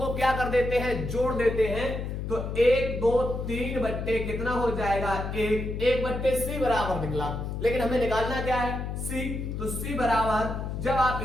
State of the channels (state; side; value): noise; left; hum, 4 dB below the sound